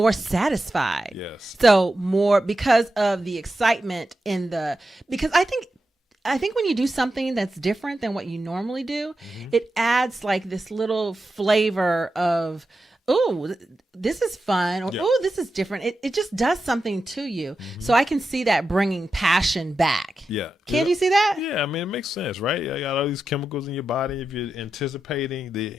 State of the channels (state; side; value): normal; both; correlation 0.90